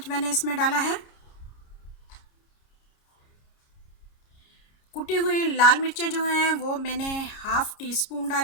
मैंने इसमें डाला है। कुटी हुई लाल मिर्चें जो हैं वो मैंने 1/2 टीस्पून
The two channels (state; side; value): late; right; 29 ms